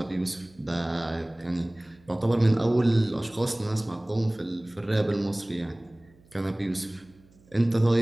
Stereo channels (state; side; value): noise; right; hum, 29 dB below the sound